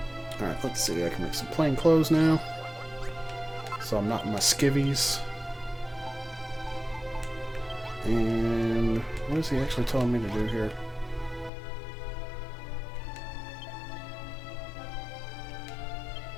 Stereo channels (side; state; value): right; drops out; at 11.5 s